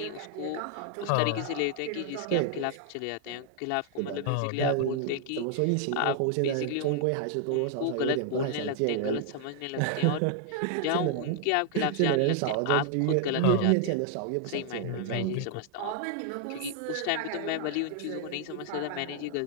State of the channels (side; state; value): both; different; correlation 0.00